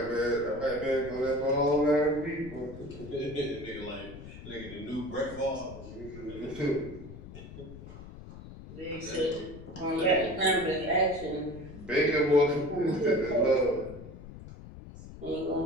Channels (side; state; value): left; noise; rumble, 14 dB below the sound